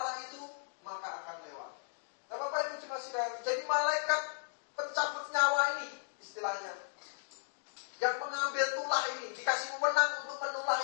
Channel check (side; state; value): right; silent; digital silence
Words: itu, maka akan lewat. Nah Bapak Ibu cuma sekalian. Jadi malaikat pencabut nyawa ini istilahnya, yang mengambil tulah ini, dikasih wewenang untuk menulah